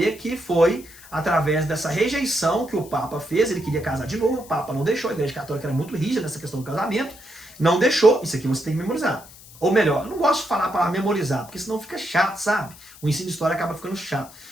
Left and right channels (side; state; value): left; noise; hiss, 20 dB below the sound